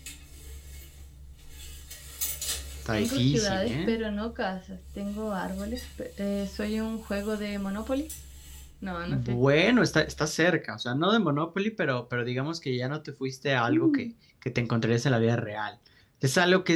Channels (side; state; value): both; identical; correlation 1.00